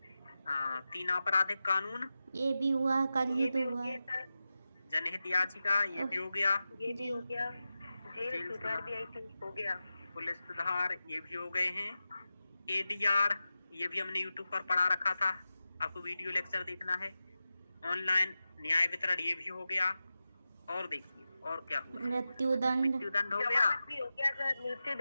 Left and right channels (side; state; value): both; inverted; correlation -0.93